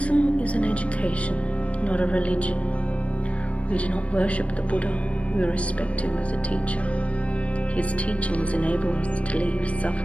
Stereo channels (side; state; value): right; late; 0.063 ms